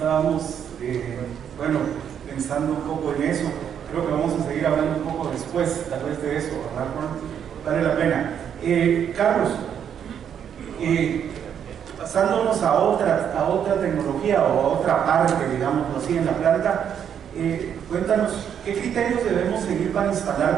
pensando un poco en eso. Creo que vamos a seguir hablando un poco después, tal vez de eso, ¿verdad, Juan? Vale la pena. Carlos, pasándonos a otra tecnología o a otra parte, digamos así, en la planta, cuéntanos, ¿qué criterios debemos seguir para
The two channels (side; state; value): left; quieter; 8.6 dB